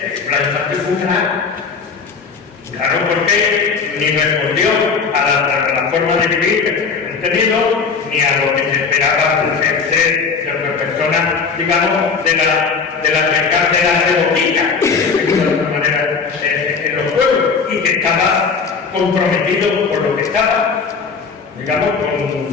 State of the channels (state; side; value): quieter; right; 5.4 dB